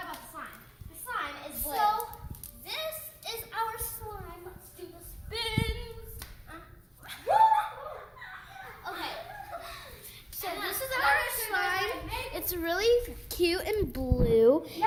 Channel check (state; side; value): identical; both; correlation 1.00